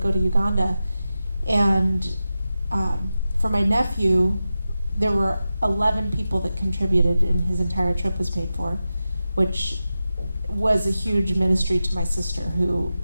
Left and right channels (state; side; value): inverted; both; correlation -0.93